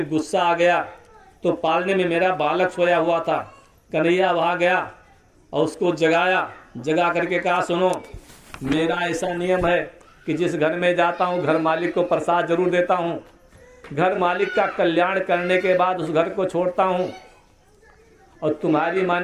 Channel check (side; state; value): both; identical; correlation 1.00